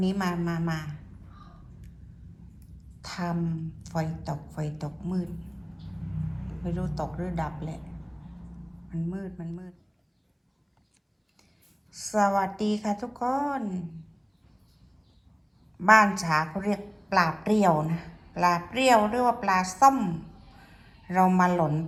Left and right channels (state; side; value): identical; both; correlation 1.00